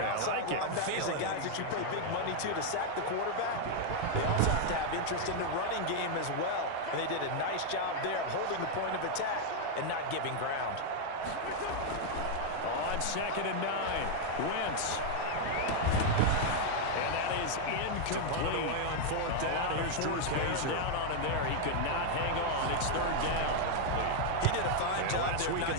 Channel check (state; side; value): different; both; correlation 0.00